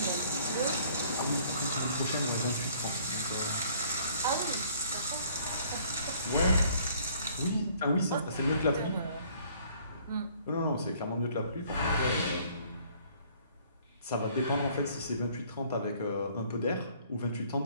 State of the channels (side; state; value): both; inverted; correlation -0.58